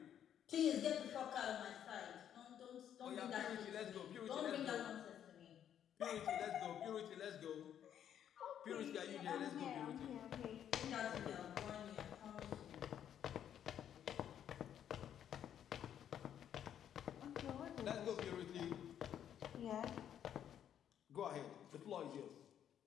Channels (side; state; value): right; quieter; 9.7 dB